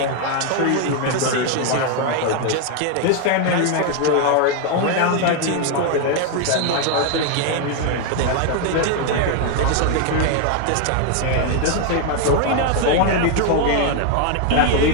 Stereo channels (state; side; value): different; both; correlation 0.01